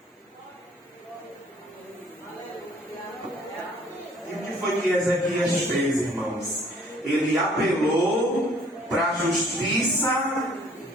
E o que foi que Ezequias fez, irmãos? Ele apelou para a justiça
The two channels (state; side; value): normal; both; correlation 0.57